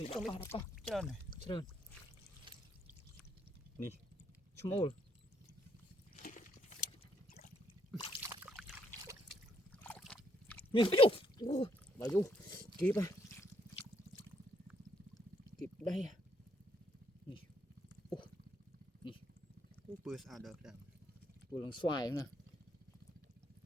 đapa trơn này trơn nè small nè bà du kịp à kịp đây à nè bữa sao được đằng vừa lần xoài nè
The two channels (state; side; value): normal; both; correlation 0.72